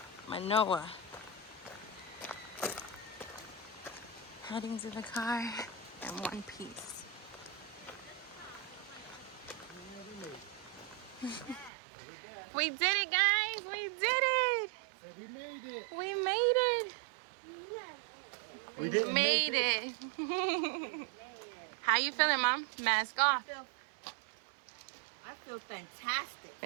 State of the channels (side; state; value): left; drops out; at 11.7 s